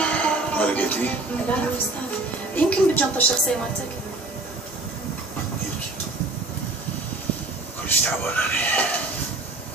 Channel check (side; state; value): left; quieter; 3.0 dB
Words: ما لقيتيه؟ لا استاذ، يمكن بالجنطة الشخصية مالتك. يمكن. كلش تعبان انا.